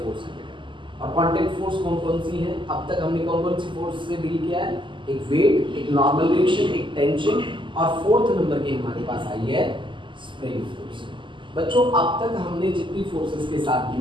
फोर्स है बेटा। और कांटेक्ट फोर्स कौन कौन सी है? अब तक हमने कौन कौन सी फोर्स से डील किया है? एक वेट, एक नॉर्मल रिएक्शन, एक टेंशन, और फोर्थ नंबर की हमारे पास आई है स्प्रिंग फोर्स। बच्चों, अब तक हमने जितनी फोर्सेस के साथ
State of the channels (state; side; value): late; left; 0.24 ms